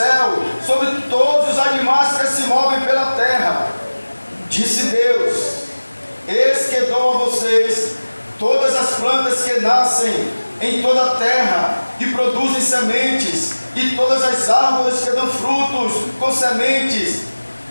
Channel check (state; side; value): inverted; both; correlation -1.00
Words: sobre todos os animais que se movem pela terra. Disse Deus: eis que dou a vocês todas as plantas que nascem em toda a terra e produzem sementes, e todas as árvores que dão frutos com sementes,